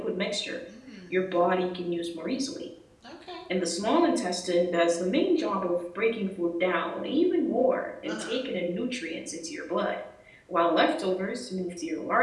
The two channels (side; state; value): both; identical; correlation 1.00